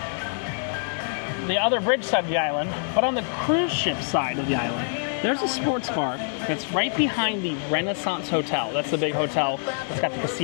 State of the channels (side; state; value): right; silent; 61 dB below the other